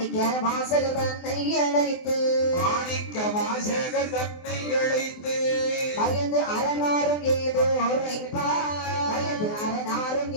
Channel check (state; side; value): late; right; 24 ms